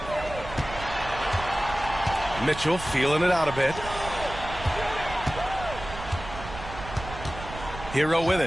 Mitchell feeling it out a bit. Hero with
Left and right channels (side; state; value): right; noise; rumble, 11 dB below the sound